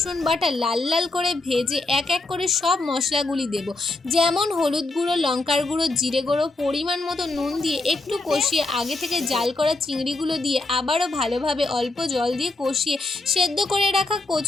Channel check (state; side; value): quieter; right; 3.1 dB